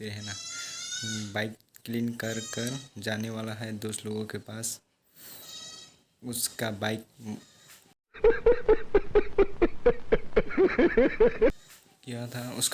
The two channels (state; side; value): identical; both; correlation 1.00